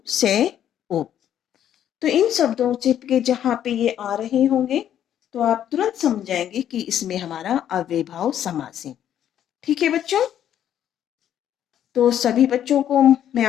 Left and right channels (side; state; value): right; quieter; 10.4 dB